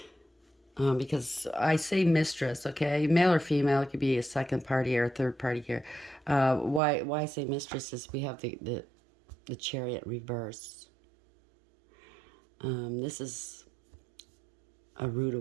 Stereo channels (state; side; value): drops out; left; at 6.8 s